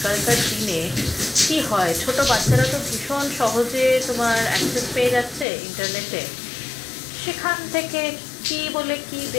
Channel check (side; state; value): right; drops out; at 5.5 s